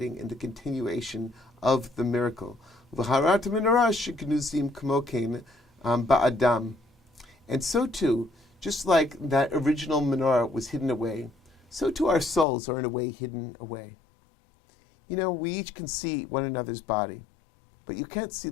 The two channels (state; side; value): drops out; right; at 12.5 s